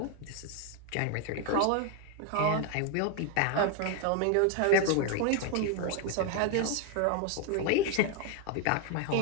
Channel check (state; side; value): different; both; correlation 0.01